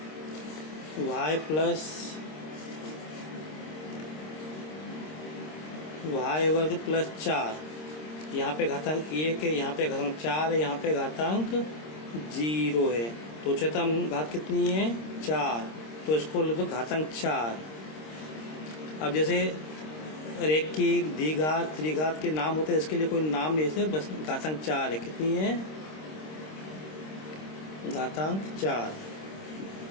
y प्लस y वर्ग प्लस 4, यहाँ पे घातांक 1 है, यहाँ पे घातांक 4 है, यहाँ पे घातांक 0 है, तो उच्चतम घात कितनी है 4, तो इसको लिख दो घातांक 4। अब जैसे रैखिक द्विघात त्रिघात के नाम होते हैं, इसके लिए कोई नाम नहीं है, बस घातांक 4 है। कितनी है घातांक 4।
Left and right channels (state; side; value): late; right; 26 ms